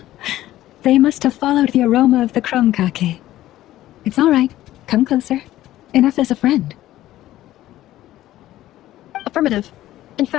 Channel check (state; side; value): quieter; right; 14.5 dB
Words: They must have followed the aroma of the krumkake. It's all right. Come closer. Enough as a friend. Affirmative. In